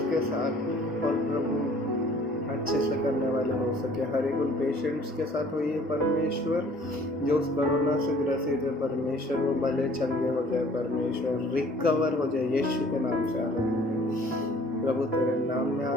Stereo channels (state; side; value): normal; both; correlation 0.54